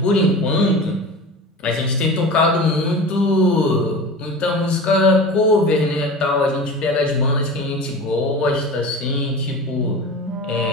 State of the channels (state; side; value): normal; both; correlation 0.33